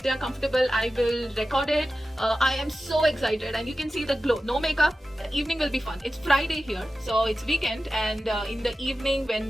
they are comfortable, I will record it. I am so excited, and you can see the glow. No makeup. The evening will be fun. It's Friday here, so it's weekend, and in the evening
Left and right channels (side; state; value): both; normal; correlation 0.94